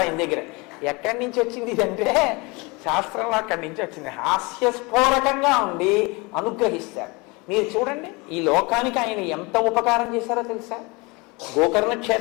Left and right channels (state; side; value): quieter; right; 26.7 dB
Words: ఆయన దగ్గర. ఎక్కడి నుంచి వచ్చింది ఇదంటే శాస్త్రంలో అక్కడి నుంచి వచ్చింది. హాస్యస్ఫోరకంగా ఉండి అనుగ్రహిస్తారు. మీరు చూడండి ఈ లోకానికి ఆయన ఎంత ఉపకారం చేశారో తెలుసా? గోకర్ణ